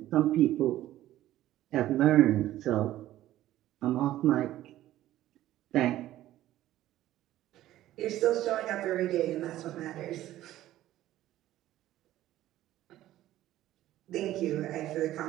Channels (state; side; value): quieter; left; 14.1 dB